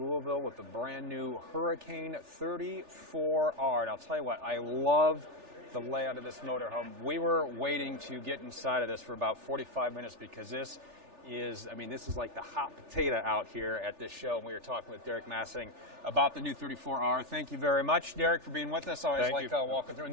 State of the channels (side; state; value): left; late; 3.4 ms